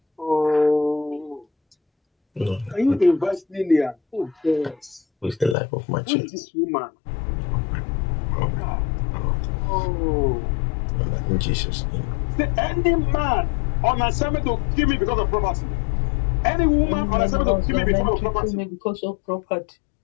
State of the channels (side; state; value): right; drops out; at 5.6 s